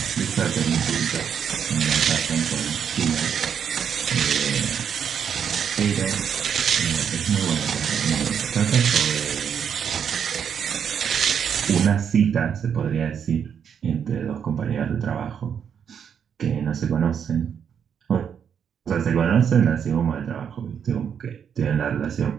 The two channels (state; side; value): quieter; left; 7.8 dB